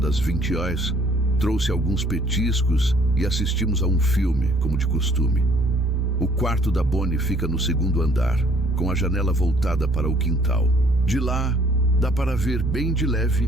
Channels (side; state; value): both; normal; correlation 0.60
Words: 20 horas, trouxe alguns petiscos e assistimos a um filme, como de costume. O quarto da Bonnie fica no segundo andar, com a janela voltada para o quintal. De lá, dá para ver bem de